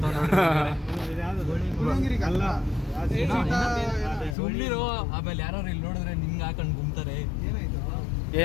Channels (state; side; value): drops out; right; at 4.4 s